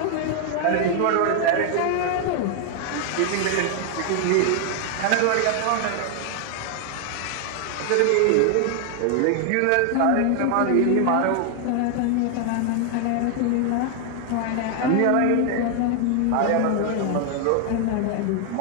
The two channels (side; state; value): both; different; correlation 0.00